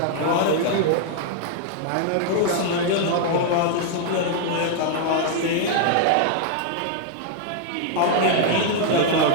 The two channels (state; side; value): different; both; correlation -0.01